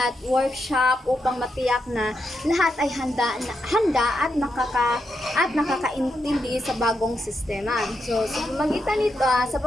workshop upang matiyak na lahat ay handa at nakakaintindi sa bagong sistema. So sa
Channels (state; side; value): normal; both; correlation 0.84